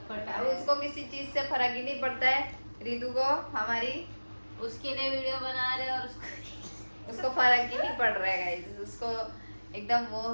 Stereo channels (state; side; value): inverted; both; correlation -1.00